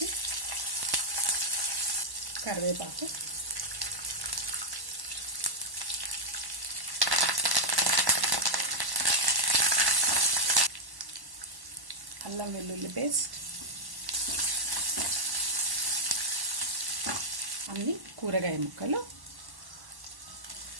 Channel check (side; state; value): left; late; 1.1 ms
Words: కరివేపాకు, అల్లం వెల్లుల్లి పేస్ట్, అన్ని కూరగాయ ముక్కలు,